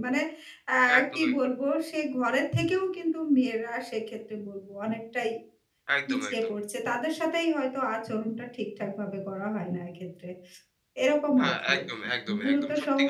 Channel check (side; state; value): both; identical; correlation 1.00